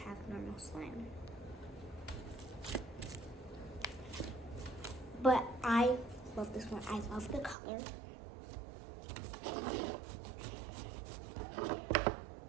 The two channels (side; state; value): left; drops out; at 7.6 s